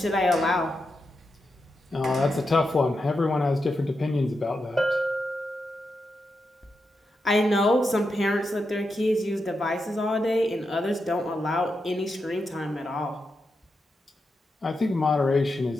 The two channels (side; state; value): both; normal; correlation 0.87